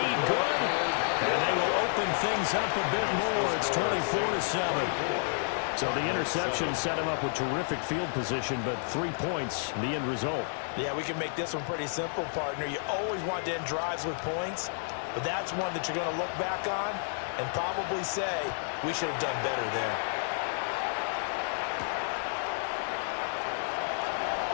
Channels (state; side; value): silent; right; digital silence